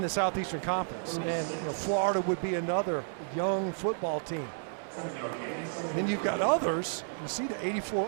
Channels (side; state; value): left; silent; digital silence